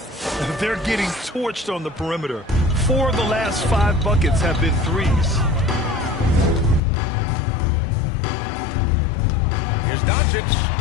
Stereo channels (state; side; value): drops out; right; at 6.8 s